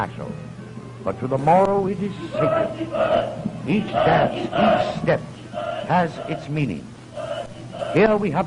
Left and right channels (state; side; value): identical; both; correlation 1.00